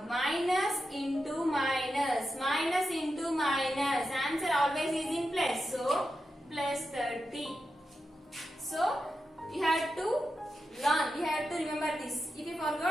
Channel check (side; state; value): both; normal; correlation 0.89